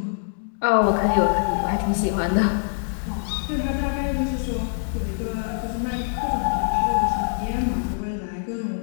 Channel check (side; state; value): right; silent; digital silence